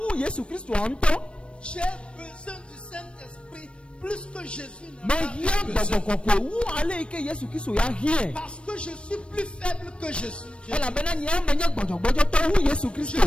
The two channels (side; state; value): right; late; 0.059 ms